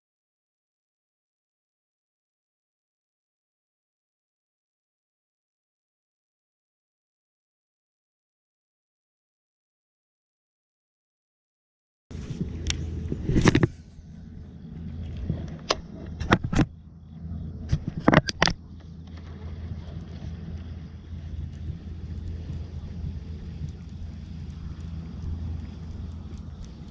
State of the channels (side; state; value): both; identical; correlation 1.00